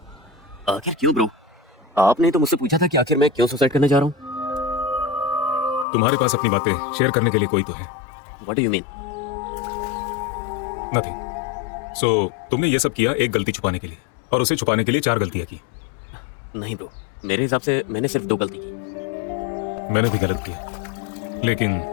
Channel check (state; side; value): drops out; right; at 5.9 s